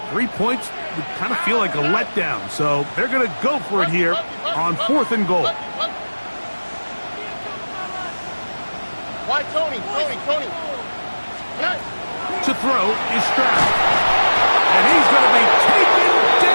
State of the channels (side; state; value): both; inverted; correlation -1.00